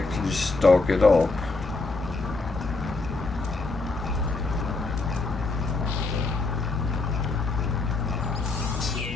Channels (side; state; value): right; quieter; 3.6 dB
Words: stock it up.